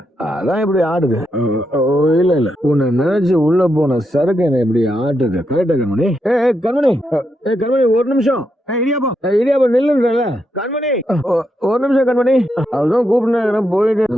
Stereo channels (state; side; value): normal; both; correlation 0.82